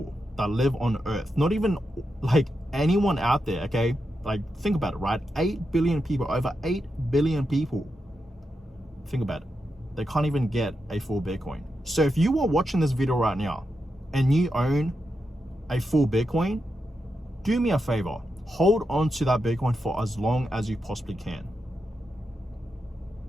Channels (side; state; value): both; normal; correlation 0.87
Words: that live on Earth. Not even like anyone out there, okay? Like, think about it, right? 8 billion people, over 8 billion people. Think about it. They can't even get a full Bitcoin. So if you are watching this video right now and you own a full Bitcoin, do me a favor, hold on to that Bitcoin for as long as you possibly can.